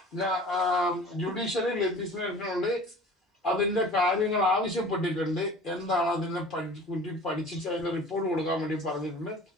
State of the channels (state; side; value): normal; both; correlation 0.43